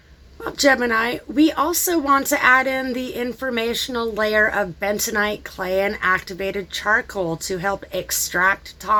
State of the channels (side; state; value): both; identical; correlation 1.00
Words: Well, Gemini, we also want to add in the informational layer of bentonite clay and activated charcoal to help extract